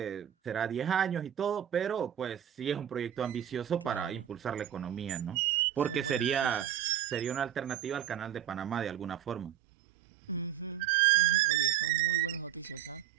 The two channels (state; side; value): quieter; left; 10.5 dB